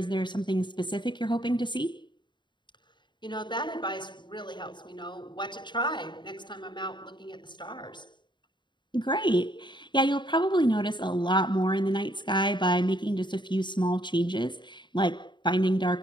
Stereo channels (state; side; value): late; right; 0.22 ms